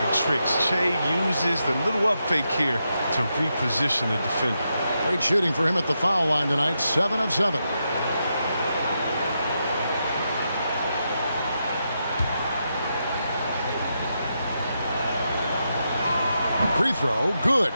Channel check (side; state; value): both; inverted; correlation -0.84